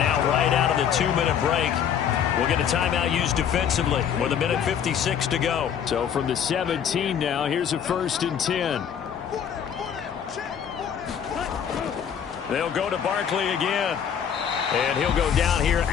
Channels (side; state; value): right; quieter; 8.3 dB